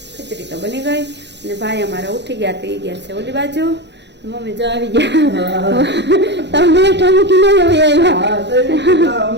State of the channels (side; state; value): left; late; 0.51 ms